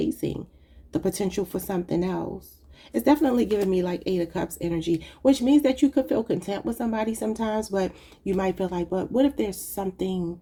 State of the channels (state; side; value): identical; both; correlation 1.00